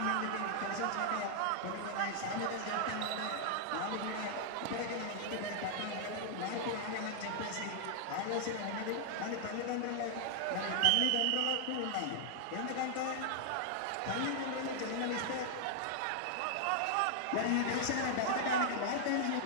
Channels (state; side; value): different; both; correlation -0.01